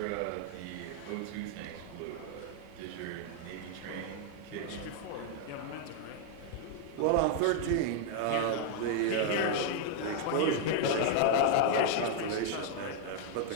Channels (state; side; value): different; both; correlation 0.00